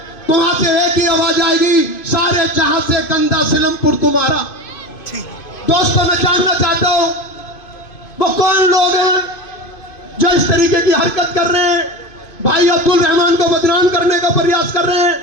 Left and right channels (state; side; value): late; right; 2.5 ms